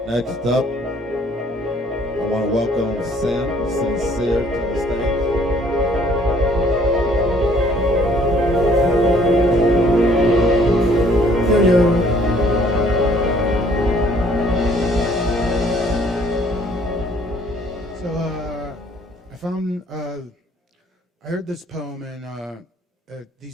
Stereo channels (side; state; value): both; normal; correlation 0.59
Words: Next up, I want to welcome Sincere to the stage. Yo. So I heard this poem and